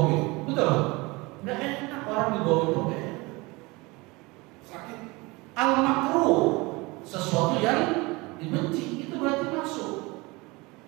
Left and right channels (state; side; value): quieter; left; 24.2 dB